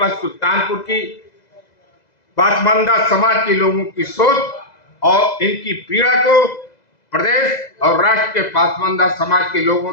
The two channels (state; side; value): late; right; 2.0 ms